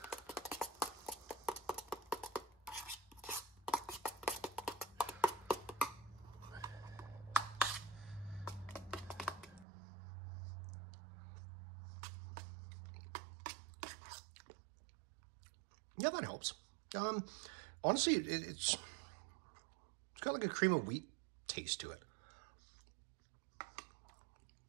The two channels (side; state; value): left; drops out; at 9.7 s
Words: Yeah, that helps. Honestly, it's got like a cream of wheat taste to it.